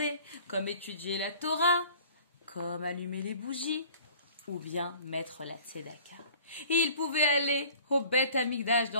comme étudier la Torah, comme allumer les bougies, ou bien mettre la tzedaka. Et ils pouvaient aller au Beth Amikdash,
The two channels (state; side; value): inverted; both; correlation -0.49